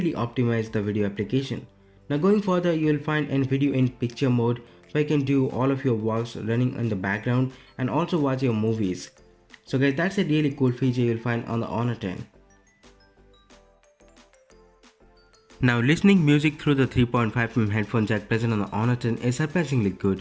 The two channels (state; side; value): identical; both; correlation 1.00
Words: optimize the video application. Now going further, you will find a video in picture mode where you can do all of your works running in the background and also watch your movies. So guys, that's a really cool feature you will find on the Honor 10. Now listening music through the 3.5mm headphone jack present on the Honor 10 is surprisingly